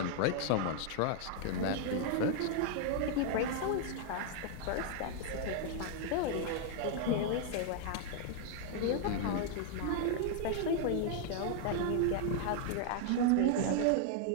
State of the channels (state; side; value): different; both; correlation 0.00